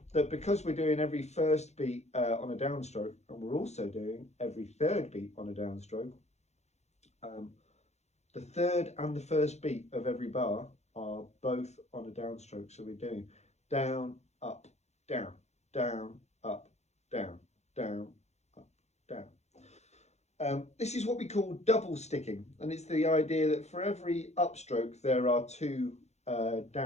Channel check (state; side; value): late; right; 0.32 ms